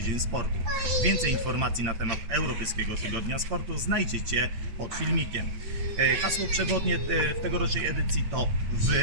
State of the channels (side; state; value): left; late; 8.6 ms